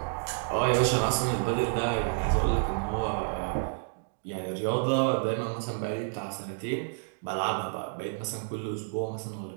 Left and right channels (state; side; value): silent; left; digital silence